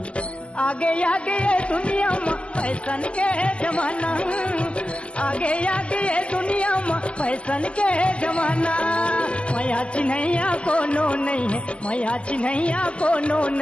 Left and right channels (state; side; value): late; right; 0.055 ms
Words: आगे आगे ये दुनिया में फैशन के जमाना, आगे आगे ये दुनिया में फैशन के जमाना। मैया चिन्हैया कोनो नहीं है, मैया चिन्हैया कोनो